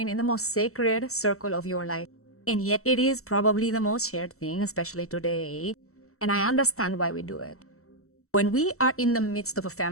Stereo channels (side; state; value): right; late; 0.64 ms